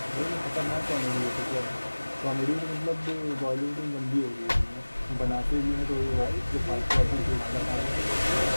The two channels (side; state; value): both; inverted; correlation -1.00